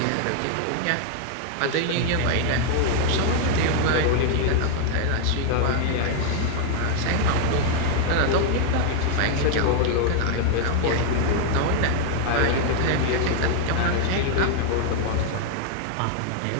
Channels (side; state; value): both; different; correlation 0.00